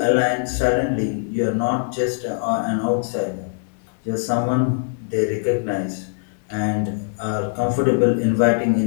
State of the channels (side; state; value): right; silent; 64 dB below the other